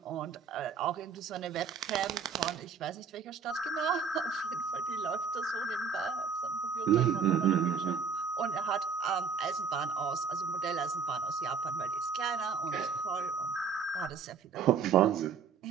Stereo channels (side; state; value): left; quieter; 5.8 dB